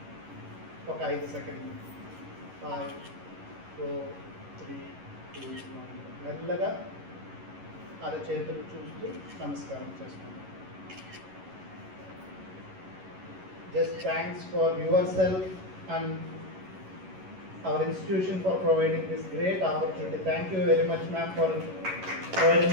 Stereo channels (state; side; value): late; left; 11 ms